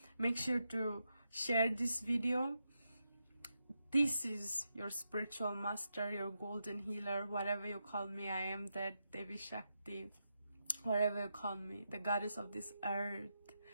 Make sure to share this video. This is your spiritual master, your golden healer, whatever you call me. I am that Devi Shakti, whatever you call me, the goddess of this earth,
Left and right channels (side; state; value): both; inverted; correlation -0.85